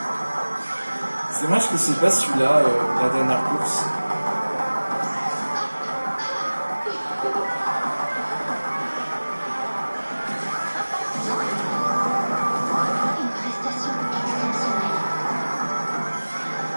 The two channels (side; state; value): both; inverted; correlation -1.00